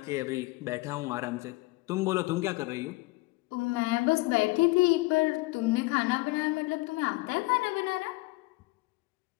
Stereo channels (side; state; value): right; quieter; 22.6 dB